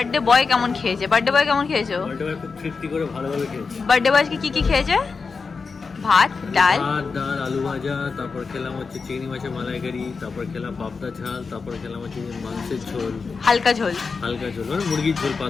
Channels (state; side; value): quieter; right; 4.8 dB